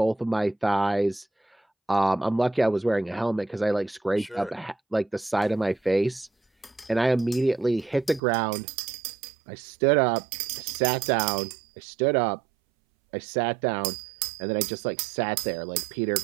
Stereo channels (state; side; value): drops out; left; at 8.2 s